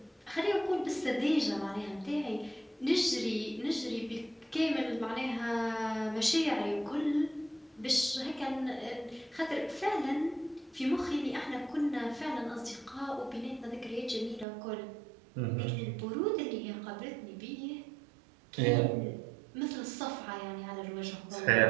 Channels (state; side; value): drops out; left; at 14.5 s